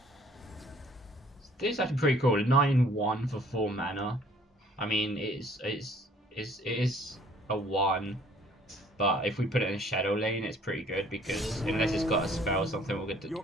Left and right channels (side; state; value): both; normal; correlation 0.58